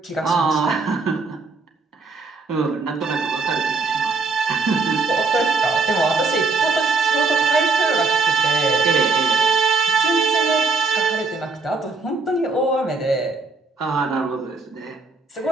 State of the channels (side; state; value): left; quieter; 4.1 dB